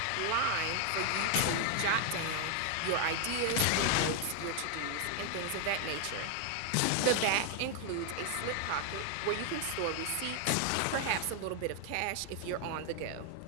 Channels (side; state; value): both; different; correlation 0.00